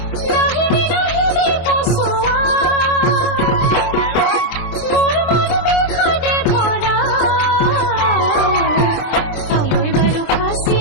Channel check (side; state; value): right; late; 23 ms